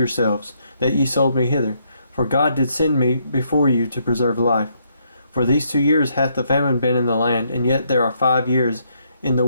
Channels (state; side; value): inverted; both; correlation -0.74